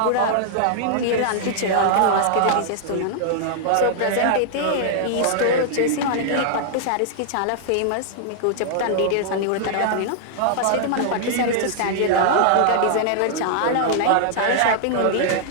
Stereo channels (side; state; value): both; different; correlation -0.01